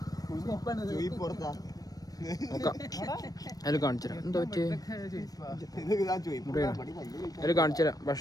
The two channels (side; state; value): right; late; 0.18 ms